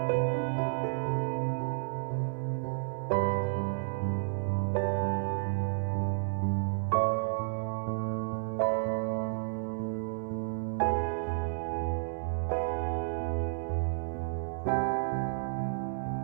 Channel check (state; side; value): silent; left; 57 dB below the other